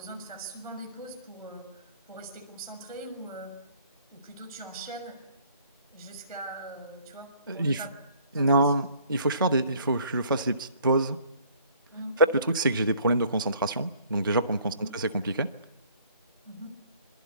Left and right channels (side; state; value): both; inverted; correlation -0.57